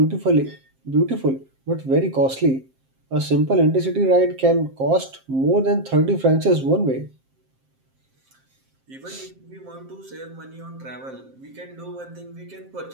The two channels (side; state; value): left; late; 7.6 ms